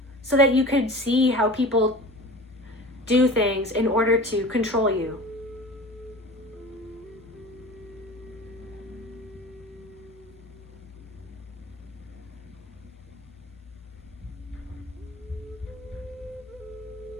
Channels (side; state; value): both; normal; correlation 0.37